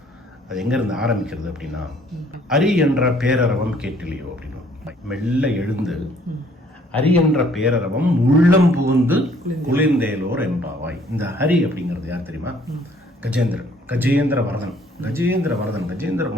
அது எங்க இருந்து ஆரம்பிக்கிறது அப்படின்னா, அரி என்ற பேரரவம் கேட்டிலையோ அப்படின்னு மெல்ல எழுந்து ஹரி என்ற பேரரவம் உள்ளம் புகுந்து குளிர்ந்தேலோர் எம்பாவாய். இந்த ஹரி அப்படிங்கிறது யார் தெரியுமா? கஜேந்திரன், கஜேந்திர வரதன். கஜேந்திர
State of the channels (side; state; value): both; normal; correlation 0.61